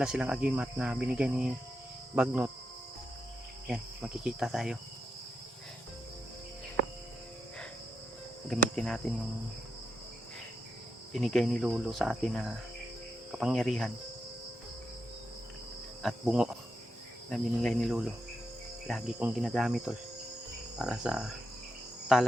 silang agimat na binigay ni Bagnot, yan makikita tayo. Gamitin natin yung binigay ni Lolo sa atin na kapangyarihan at bungo na binigay ni Lolo. Lagi kong ginagamit tol para sa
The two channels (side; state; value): both; normal; correlation 0.84